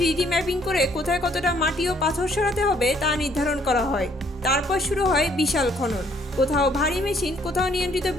ম্যাপিং করে কোথায় কতটা মাটি ও পাথর সরাতে হবে তা নির্ধারণ করা হয়। তারপর শুরু হয় বিশাল খনন, কোথাও ভারী মেশিন, কোথাও নিয়ন্ত্রিত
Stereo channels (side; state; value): both; normal; correlation 0.65